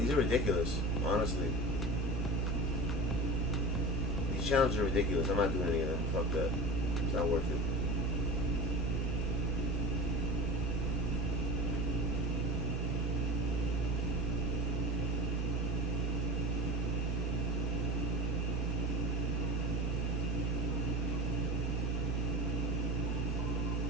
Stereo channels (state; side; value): normal; both; correlation 0.30